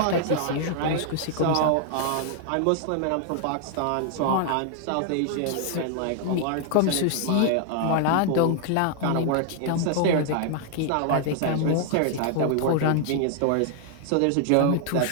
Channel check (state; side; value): different; both; correlation 0.00